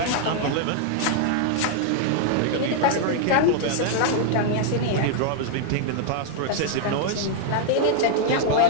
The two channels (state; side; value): different; both; correlation 0.00